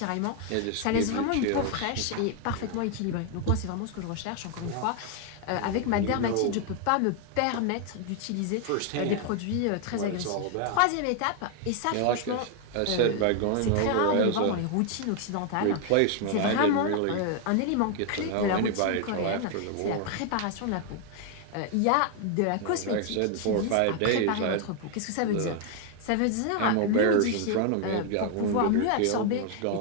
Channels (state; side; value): different; both; correlation 0.00